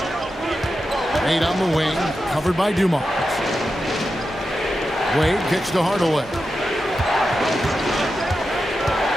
Wade on the wing, covered by Dumars. Wade kicks to Hardaway.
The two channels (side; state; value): both; normal; correlation 0.90